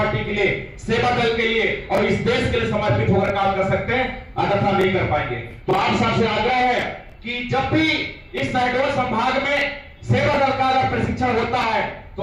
के लिए, सेवा दल के लिए और इस देश के लिए समर्पित होकर काम कर सकते हैं, अन्यथा नहीं कर पाएंगे। तो आप सबसे आग्रह है कि जब भी इस शहडोल संभाग में सेवा दल का अगर प्रशिक्षण होता है, तो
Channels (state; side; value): identical; both; correlation 1.00